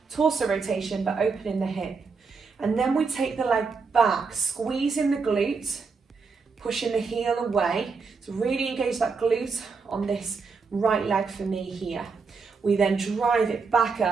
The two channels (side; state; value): left; quieter; 4.9 dB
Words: torso rotation but opening the hip. And then we take the leg back, squeezing the glute, pushing the heel away. So really engage that glute on this right leg for me here. We then drive it back